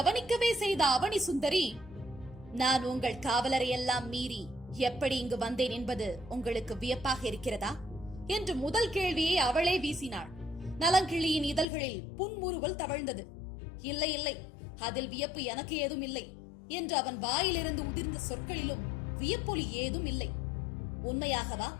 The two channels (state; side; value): drops out; right; at 11.7 s